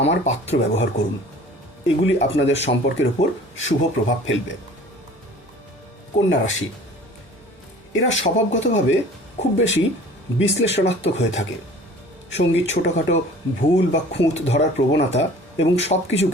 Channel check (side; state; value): both; normal; correlation 0.47